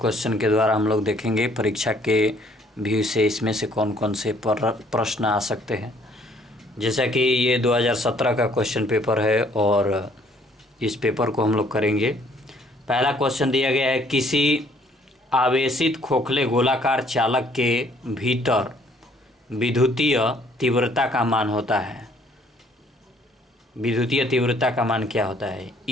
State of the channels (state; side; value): normal; both; correlation 0.62